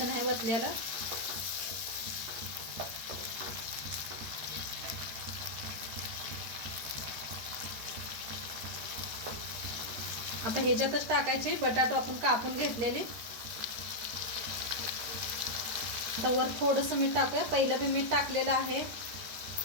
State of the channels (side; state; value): left; late; 13 ms